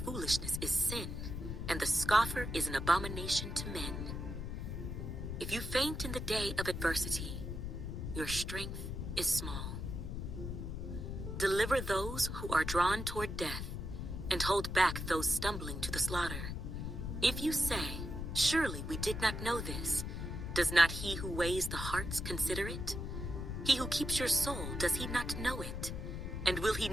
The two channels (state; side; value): noise; left; rumble, 5 dB below the sound